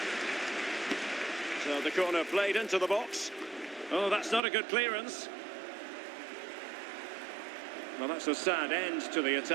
So the corner played into the box. Oh, that's not a good clearance. Well, that's a sad end to the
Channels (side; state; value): left; drops out; at 4.4 s